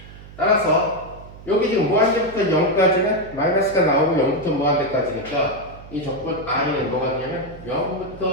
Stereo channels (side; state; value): right; noise; hum, 17 dB below the sound